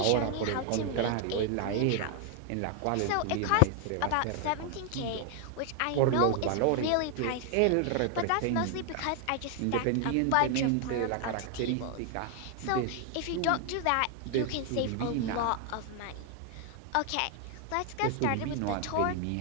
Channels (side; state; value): both; different; correlation 0.00